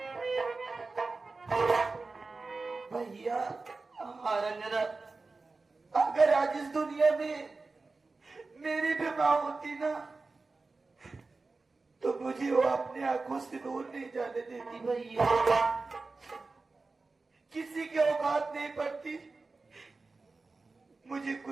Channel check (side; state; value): left; quieter; 3.8 dB